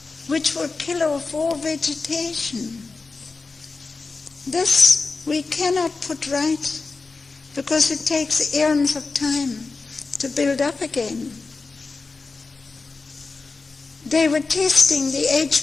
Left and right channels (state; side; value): quieter; right; 4.1 dB